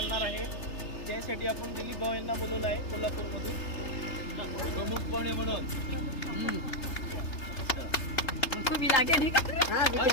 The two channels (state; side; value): late; right; 3.3 ms